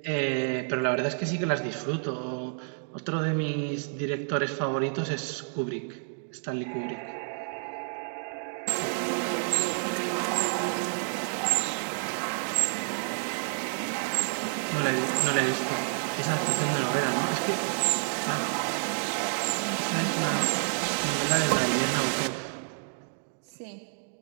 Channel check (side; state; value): left; silent; digital silence